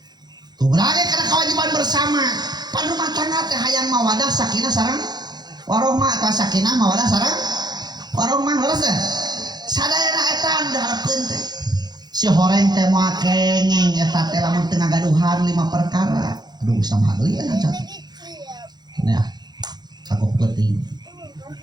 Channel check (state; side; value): late; left; 0.20 ms